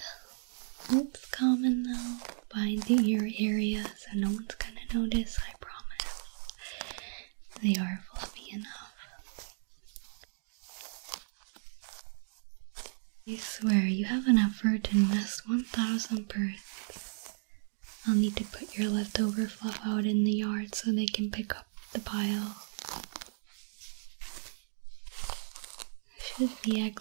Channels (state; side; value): silent; left; digital silence